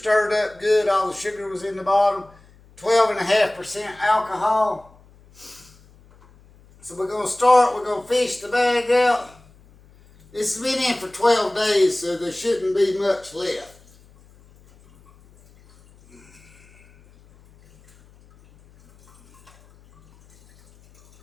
up good. All the sugar was in the bottom. 12.5% alcohol. So we're going to start. We're going to fish the bag out. This has been in for 12 days, so there shouldn't be much left.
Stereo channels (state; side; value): noise; left; hum, 28 dB below the sound